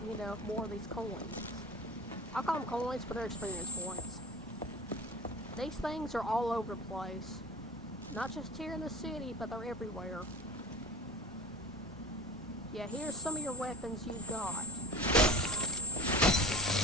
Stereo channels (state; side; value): normal; both; correlation 0.37